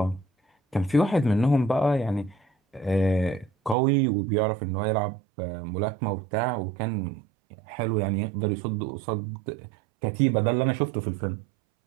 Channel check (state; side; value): drops out; left; at 3.8 s